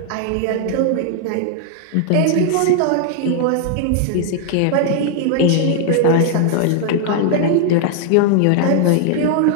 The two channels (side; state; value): both; different; correlation 0.00